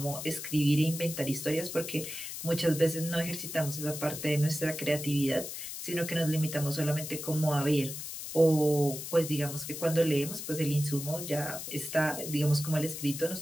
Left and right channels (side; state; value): left; noise; hiss, 8 dB below the sound